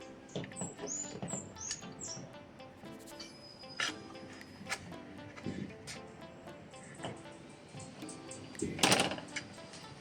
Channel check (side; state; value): both; identical; correlation 1.00